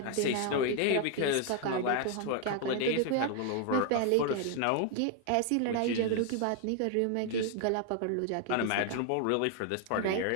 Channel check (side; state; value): both; different; correlation 0.00